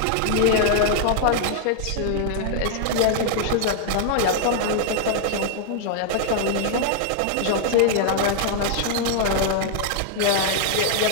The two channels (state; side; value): different; both; correlation -0.01